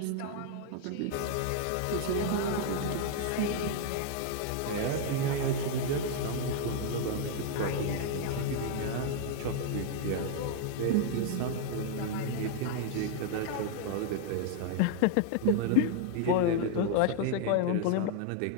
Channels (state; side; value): different; both; correlation 0.00